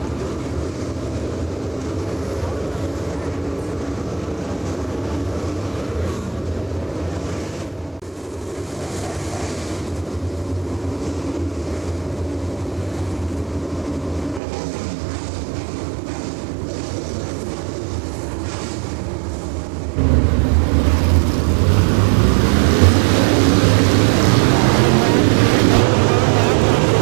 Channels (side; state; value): left; drops out; at 14.4 s